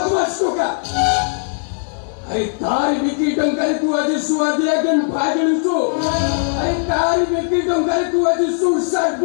টোকা আরে তার বিক্রি টঙ্কারে তুই আজ সুয়া দিয়া কেন ভাগলিছো আরে তার বিক্রি টঙ্কারে তুই আজ সুসাইড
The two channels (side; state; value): right; silent; digital silence